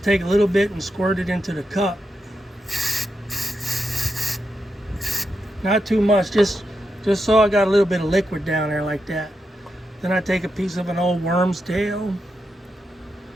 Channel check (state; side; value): normal; both; correlation 0.86